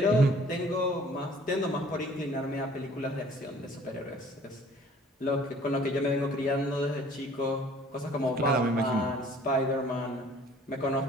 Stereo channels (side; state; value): both; normal; correlation 0.53